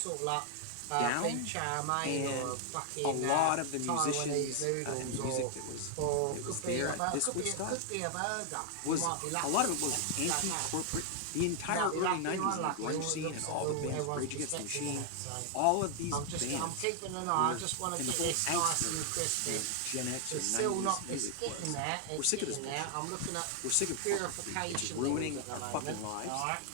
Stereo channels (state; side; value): different; both; correlation 0.00